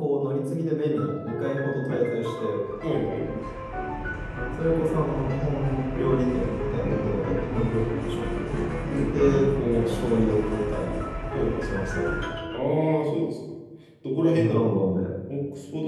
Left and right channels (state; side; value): identical; both; correlation 1.00